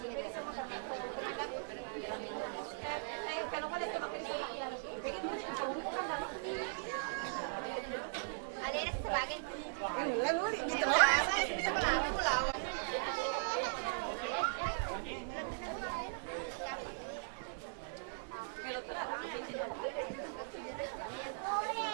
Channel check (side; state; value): left; silent; 52 dB below the other